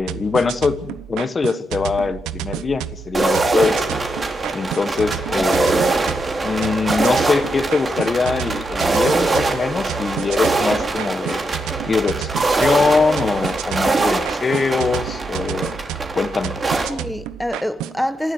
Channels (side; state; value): both; normal; correlation 0.83